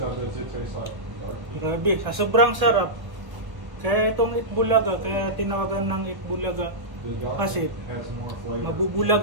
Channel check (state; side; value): late; left; 1.0 ms